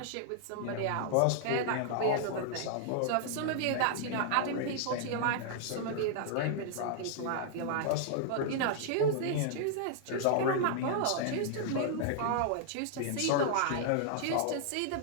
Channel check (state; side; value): different; both; correlation -0.01